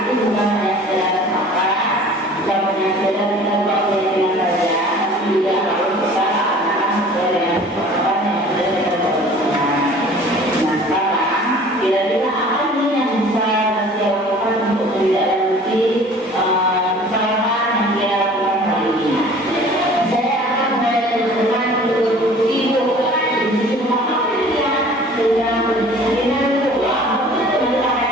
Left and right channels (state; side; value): normal; both; correlation 0.47